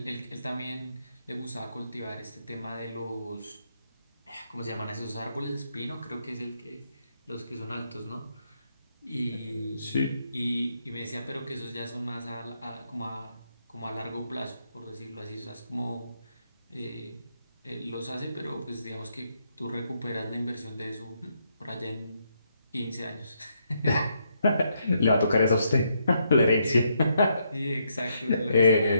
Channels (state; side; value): inverted; both; correlation -0.77